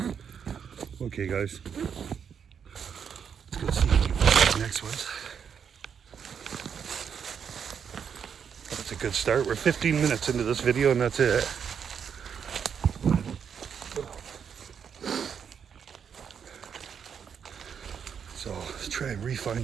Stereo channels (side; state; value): left; quieter; 7.3 dB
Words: Okay, guys. Let's go see what the next one's. That's a good start. We're 15 minutes into this video and that's it. So let's try and refine